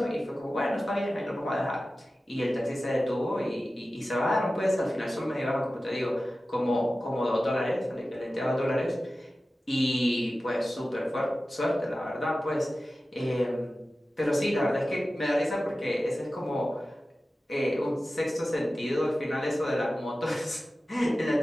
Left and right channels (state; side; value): normal; both; correlation 0.95